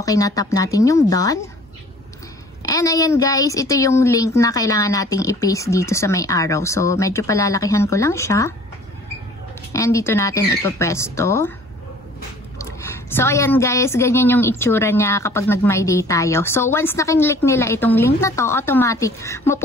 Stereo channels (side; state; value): both; normal; correlation 0.51